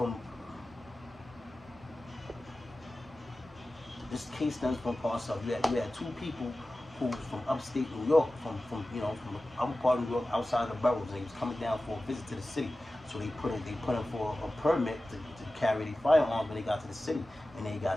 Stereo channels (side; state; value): both; normal; correlation 0.95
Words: this case stems from parts of, you had 2 people who was from upstate New York, from the upper part of New York, outside the boroughs. They was coming down for a visit to the city. So they put in for a permit to carry their firearms when they got to the city, and they